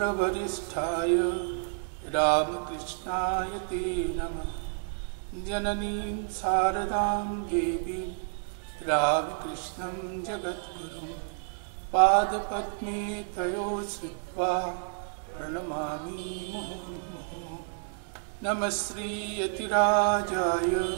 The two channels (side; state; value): left; silent; 58 dB below the other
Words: रामकृष्णाय ते नमः। जननीं शारदां देवीं रामकृष्णं जगद्गुरुं पादपद्मे तयो श्रुत्वा प्रणमामि मुहुर्मुहुः। नमः श्रीयतिराजाय